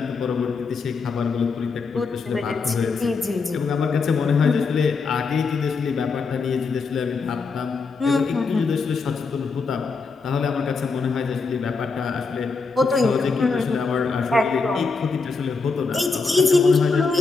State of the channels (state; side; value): quieter; right; 4.5 dB